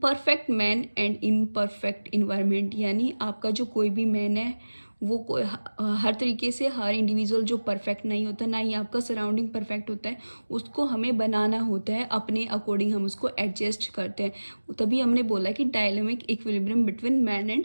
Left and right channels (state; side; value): inverted; both; correlation -1.00